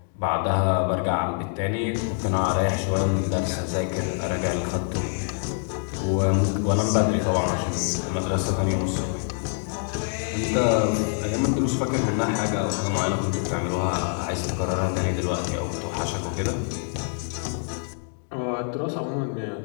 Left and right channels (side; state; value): right; silent; 61 dB below the other